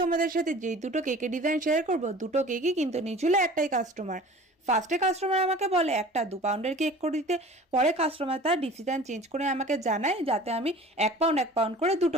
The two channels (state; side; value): normal; both; correlation 0.43